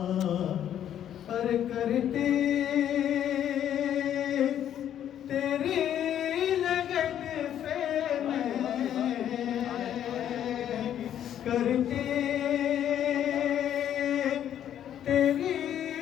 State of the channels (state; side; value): quieter; right; 10.4 dB